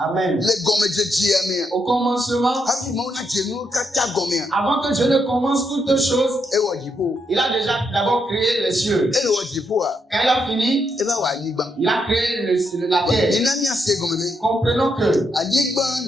Les gomme de Dieu. Au commencement, Hafi mo na jenu kata gomme. avant que Dieu ne commence toutes choses, E wo jipo. il a déjà d'abord créé les cieux. E wo jipo a. Quand il a fini, E ba wa anyigba. il a créé la terre. Ina mi ase gomme me. Comprenons que Anyigba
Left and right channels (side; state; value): both; normal; correlation 0.79